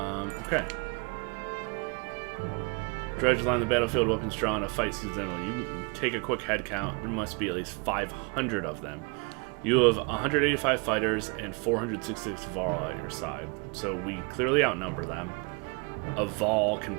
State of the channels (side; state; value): left; quieter; 32.5 dB